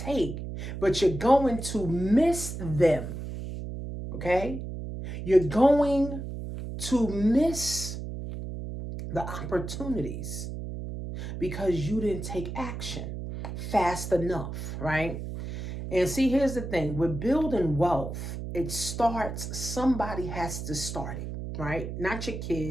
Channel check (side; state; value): right; noise; hum, 7 dB below the sound